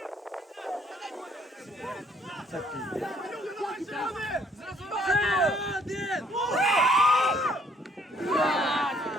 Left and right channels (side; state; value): both; normal; correlation 0.64